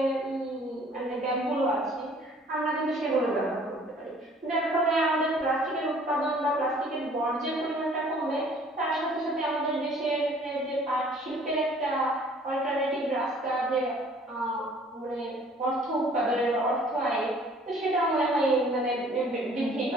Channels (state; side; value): normal; both; correlation 0.55